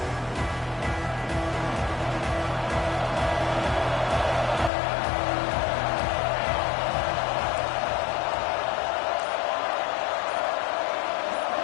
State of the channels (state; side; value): drops out; right; at 4.7 s